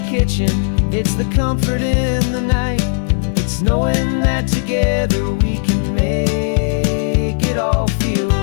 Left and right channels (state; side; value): silent; right; digital silence